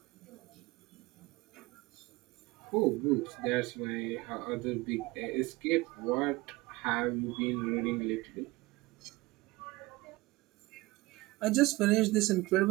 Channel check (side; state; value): left; quieter; 21.0 dB